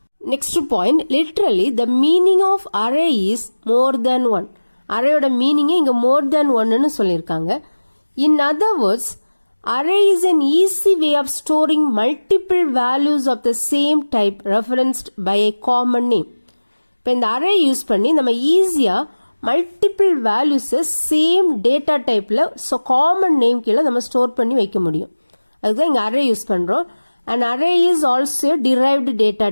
Next point, literally the meaning of array is more than one. அரேயோட மீனிங்கே இங்கே மோர் தேன் ஒன்னு சொல்லியிருக்காங்க. In other words, array is an easy way of storing multiple values of the same type referenced by a common name. இப்போ இந்த array use பண்ணி நம்ம ஈஸியாக மல்டிபிள் வேல்யூஸை சேம் டேட்டா டைப்பில் காமன் நேம் கீழே நம்ம ஸ்டோர் பண்ணி வைக்க முடியும். அதுதான் இங்கே அரே யூஸ் பண்ணுறோம். And array is also derived data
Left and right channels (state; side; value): inverted; both; correlation -1.00